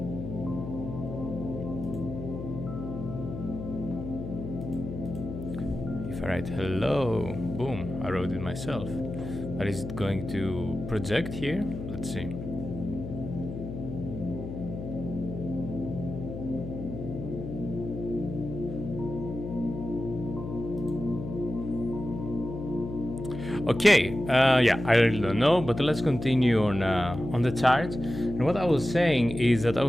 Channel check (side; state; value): left; noise; hum, 8 dB below the sound